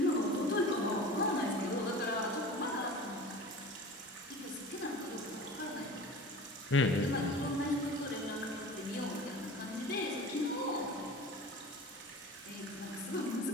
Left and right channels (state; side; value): normal; both; correlation 0.37